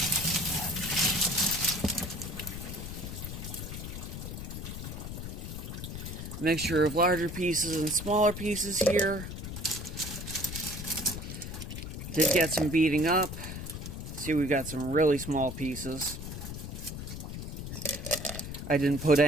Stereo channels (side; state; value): left; noise; rumble, 7 dB below the sound